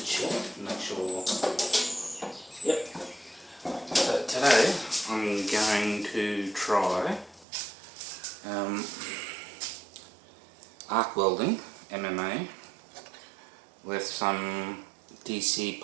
check, make sure. Yep. So today I'm going to try arc welding, MMA, with some DC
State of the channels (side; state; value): left; drops out; at 7.5 s